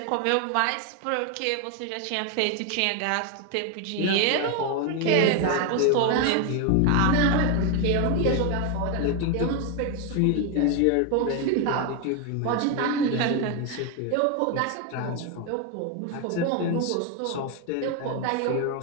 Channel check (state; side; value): different; both; correlation 0.01